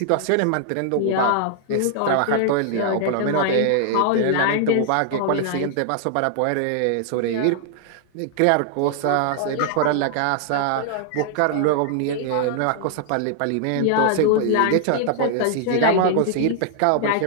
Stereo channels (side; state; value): both; different; correlation -0.01